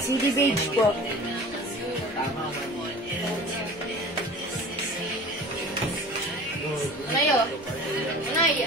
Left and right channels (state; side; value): noise; right; rumble, 27 dB below the sound